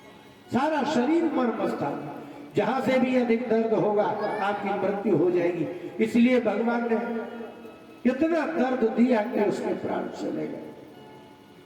सारा शरीर मर्म स्थान, जहां से भी अधिक दर्द होगा आपकी मृत्यु हो जाएगी। इसलिए भगवान ने इतना दर्द दिया कि उसके प्राण चले गए।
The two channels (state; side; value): identical; both; correlation 1.00